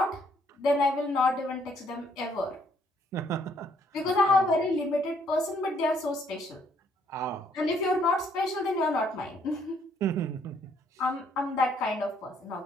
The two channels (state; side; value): normal; both; correlation 0.67